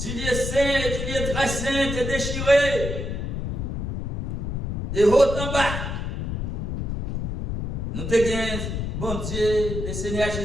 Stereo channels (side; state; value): left; noise; rumble, 3 dB below the sound